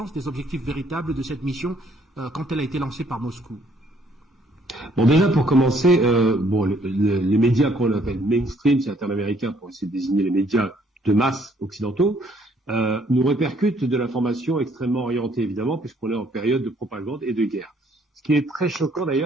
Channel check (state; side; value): normal; both; correlation 0.65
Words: des objectifs véritables de cette mission quand elle a été lancée par Moscou. Bon, déjà, pour commencer, les médias qu'on appelle mainstream, c'est un terme américain pour essayer de désigner les médias de masse occidentaux, nous répercute de l'information extrêmement orientée, évidemment, puisqu'on est en période de propagande et de guerre. Ce qui est très choquant